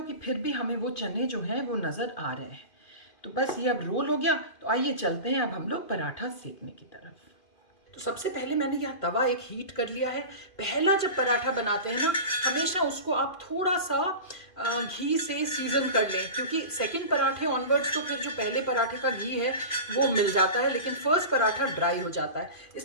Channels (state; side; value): late; right; 2.5 ms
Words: कि फिर भी हमें वो चने जो हैं वो नज़र आ रहे हैं। तो बस ये अब रोल हो गया। तो आइए चलते हैं अब हम लोग पराठा सेकने की तरफ। तो सबसे पहले मैंने यहाँ तवा एक हीट कर लिया है। पहला जब पराठा बनाते हैं ना, हमेशा उसको आप थोड़ा सा घी से सीजन कर लें, क्योंकि सेकंड पराठे ऑनवर्ड्स तो फिर जो पहले पराठे का घी है वो मिल जाता है, लेकिन फर्स्ट पराठा ड्राई हो जाता है।